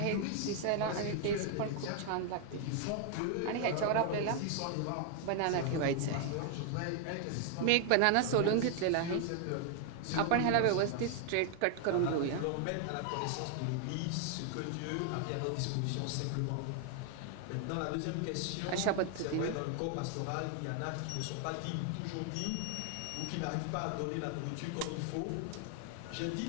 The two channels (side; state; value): both; different; correlation 0.00